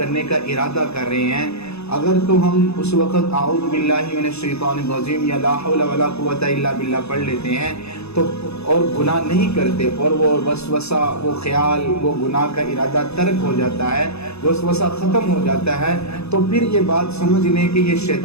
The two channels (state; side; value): late; right; 0.79 ms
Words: کا ارادہ کر رہے ہیں، اگر تو ہم اس وقت اعوذ باللہ من الشیطان الرجیم یا لا حول ولا قوت الا باللہ پڑھ لیتے ہیں تو اور گناہ نہیں کرتے، اور وہ وسوسہ، وہ خیال، وہ گناہ کا ارادہ ترک ہو جاتا ہے، وسوسہ ختم ہو جاتا ہے، تو پھر یہ بات سمجھ لیں کہ یہ